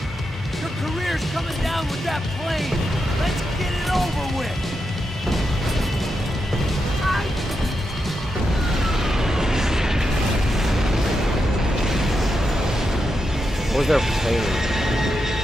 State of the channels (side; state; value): both; normal; correlation 0.86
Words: Your career's coming down with that plane! Let's get it over with! Where's their plane?